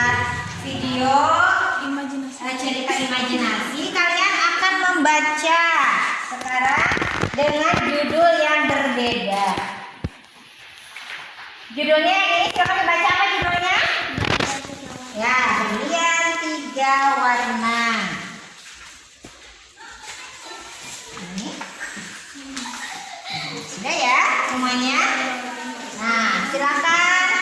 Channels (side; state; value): both; identical; correlation 1.00